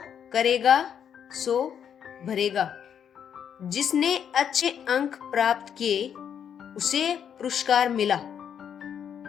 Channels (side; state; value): right; quieter; 8.3 dB